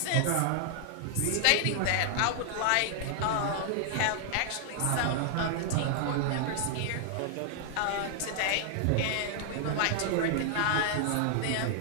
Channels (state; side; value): different; both; correlation 0.00